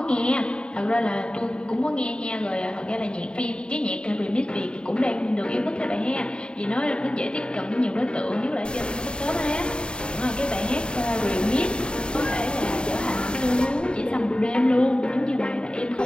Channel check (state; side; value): late; right; 0.051 ms